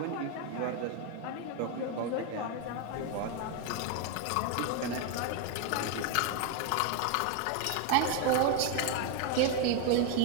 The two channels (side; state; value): both; different; correlation 0.01